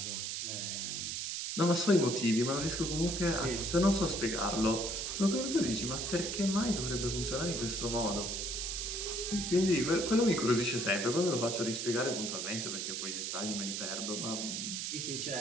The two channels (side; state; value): right; noise; hiss, 3 dB below the sound